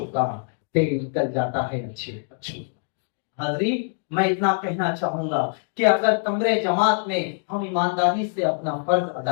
کا تیل نکل جاتا ہے اچھے بچوں۔ حاضرین، میں اتنا کہنا چاہوں گا کہ اگر کمرے جماعت میں ہم ایمانداری سے اپنا فرض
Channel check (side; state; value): right; silent; digital silence